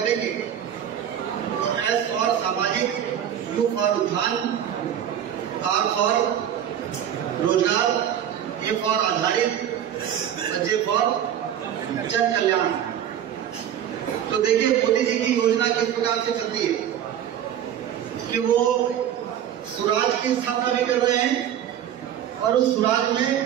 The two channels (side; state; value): left; quieter; 10.0 dB